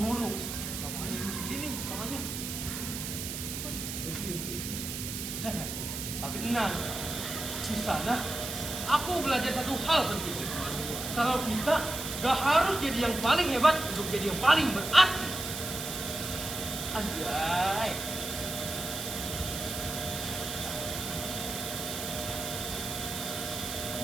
Lapangannya dulu segini nih, lapangannya. Tapi tenang, di sana aku belajar satu hal penting. Kalau kita gak harus jadi yang paling hebat untuk jadi yang paling berarti. Anjay.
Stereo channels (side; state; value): right; noise; hiss, 5 dB below the sound